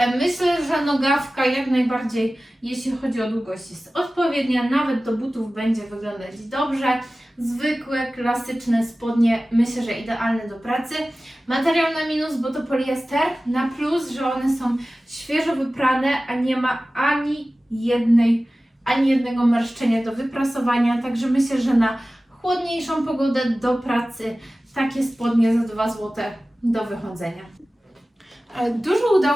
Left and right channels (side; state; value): both; normal; correlation 0.96